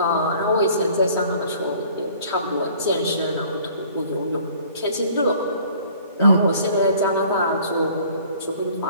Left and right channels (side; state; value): both; inverted; correlation -0.53